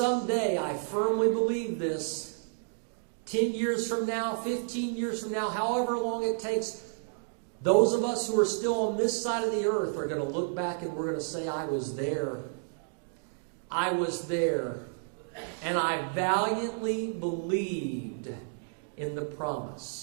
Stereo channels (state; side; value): silent; left; digital silence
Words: I firmly believe this, 10 years from now, 15 years from now, however long it takes, those of us who are still on this side of the earth are going to look back and we're going to say, I was there. I was there. And I valiantly believed in the